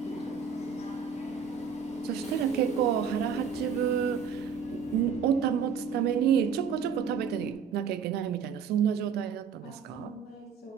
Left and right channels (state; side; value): quieter; left; 6.7 dB